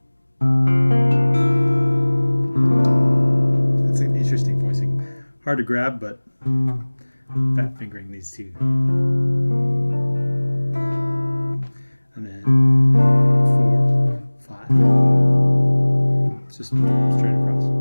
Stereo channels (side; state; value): both; inverted; correlation -1.00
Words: that's an interesting voicing. Hard to grab, but fat fingering these two. And then 4, 5. It's just straight across.